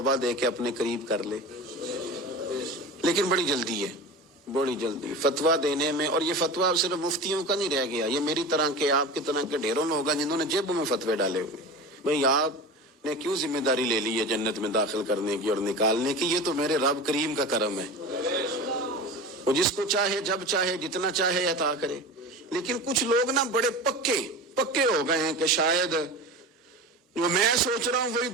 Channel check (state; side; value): normal; both; correlation 0.31